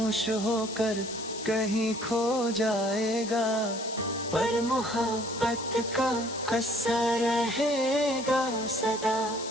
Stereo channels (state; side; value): noise; left; hiss, 11 dB below the sound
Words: होकर कहीं खो जाएगा। पर मोहब्बत का असर रहेगा सदा,